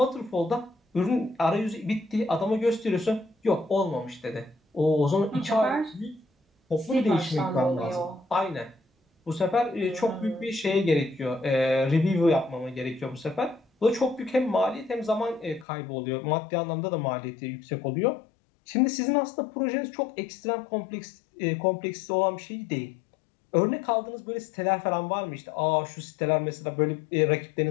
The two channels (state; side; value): drops out; right; at 15.7 s